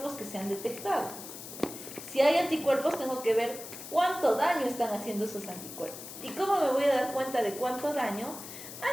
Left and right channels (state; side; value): noise; left; hiss, 12 dB below the sound